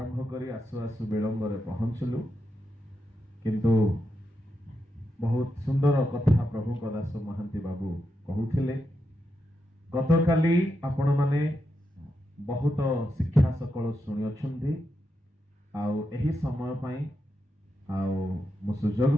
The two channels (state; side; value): normal; both; correlation 0.85